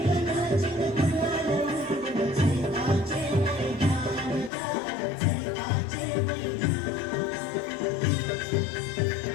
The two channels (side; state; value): right; drops out; at 4.5 s